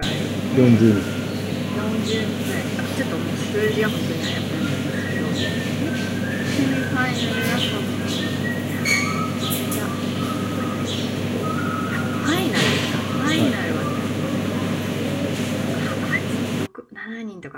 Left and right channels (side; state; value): both; identical; correlation 1.00